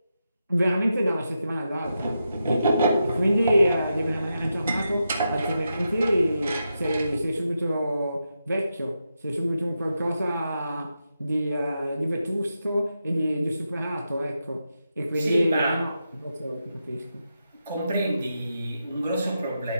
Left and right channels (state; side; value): inverted; both; correlation -0.87